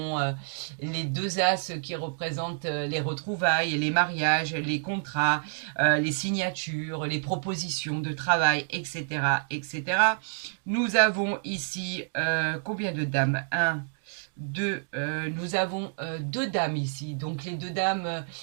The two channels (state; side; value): silent; left; digital silence